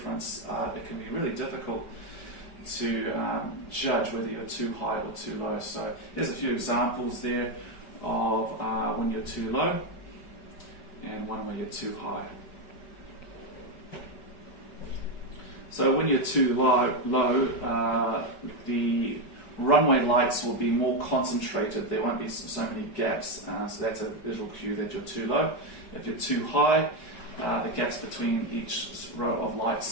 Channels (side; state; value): right; late; 5.2 ms